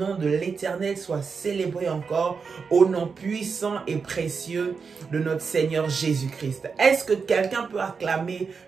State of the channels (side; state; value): left; quieter; 5.4 dB